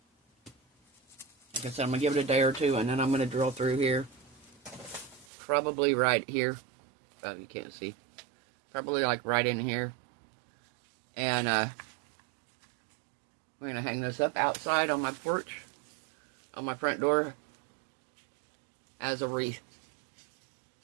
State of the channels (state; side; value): drops out; left; at 5.2 s